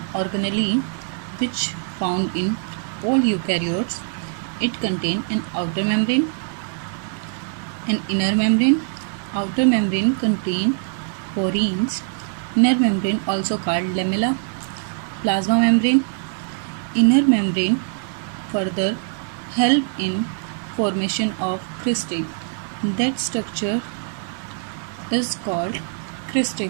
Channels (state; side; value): silent; left; 58 dB below the other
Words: organelle which found in all eukaryotes. It contains an outer membrane, an inner membrane. Outer membrane contains porins. Inner membrane also called lamella, plasma membrane. Inner membrane further help in formation of cristae. That structure is called